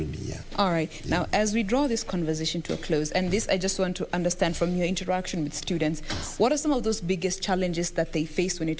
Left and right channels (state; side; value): identical; both; correlation 1.00